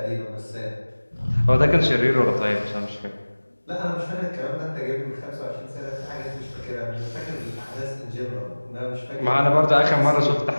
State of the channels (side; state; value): both; inverted; correlation -1.00